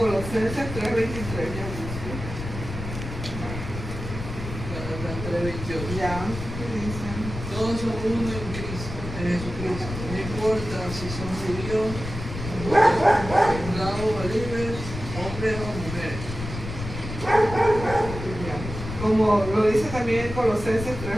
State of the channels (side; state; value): left; noise; rumble, 8 dB below the sound